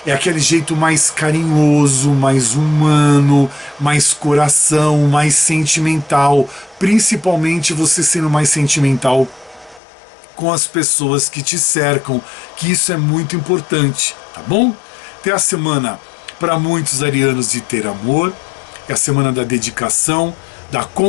É aquele jeito mais carinhoso, mais humano, mais coração, mais sentimental, principalmente você sendo mais sentimental com as pessoas que te cercam, que isso é muito importante, tá bom? Tem a semana para muitos arianos de ter amor, é a semana da dedicação, da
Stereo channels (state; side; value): drops out; right; at 9.8 s